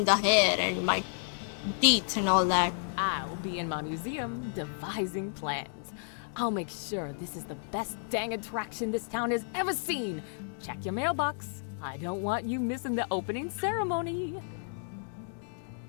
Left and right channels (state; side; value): silent; right; digital silence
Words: the hair and my teeth and all that. I'll be in my museum devising plans. I'll make sure this is the best dang attraction this town has ever seen. Check your mailbox. I don't want you missing the opening ceremony.